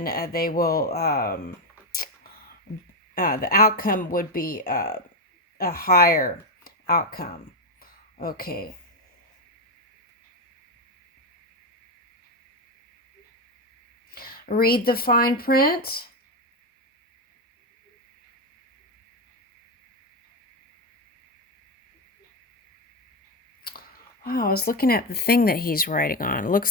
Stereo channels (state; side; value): normal; both; correlation 0.09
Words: they will, the outcome would be a higher outcome. Okay. Read the fine print. Wow, I was looking at the thing that he's writing on. It